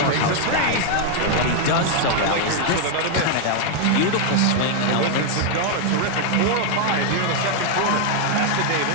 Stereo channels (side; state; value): both; different; correlation 0.00